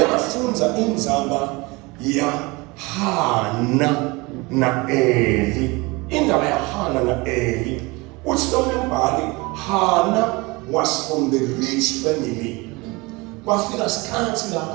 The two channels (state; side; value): quieter; left; 24.8 dB